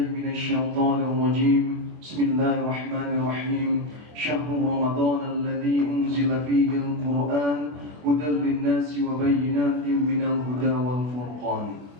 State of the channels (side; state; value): left; late; 24 ms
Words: minasy syaithanir rajim. Bismillahirrahmanirrahim. Syahrul Ramadan alladzi unzila fihi al-Qur'an hudan lin-nasi wa bayyinatin minal huda wal furqan.